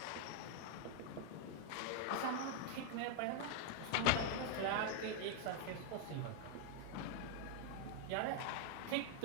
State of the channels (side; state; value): both; different; correlation 0.00